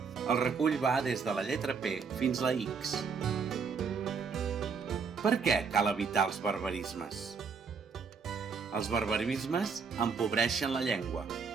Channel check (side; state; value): left; quieter; 5.5 dB